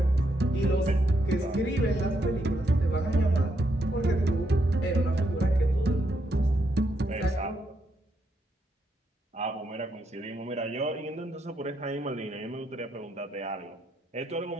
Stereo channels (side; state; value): both; normal; correlation 0.78